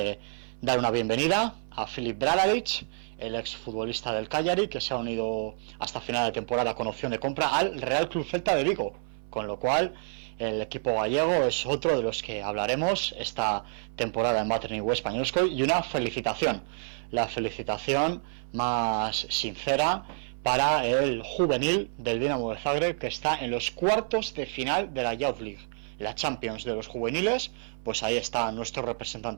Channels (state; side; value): silent; left; 59 dB below the other